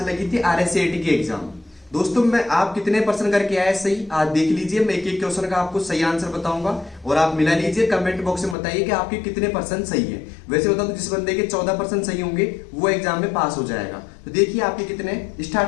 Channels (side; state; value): right; drops out; at 8.6 s